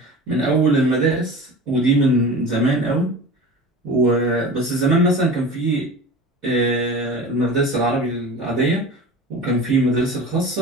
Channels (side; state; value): both; normal; correlation 0.35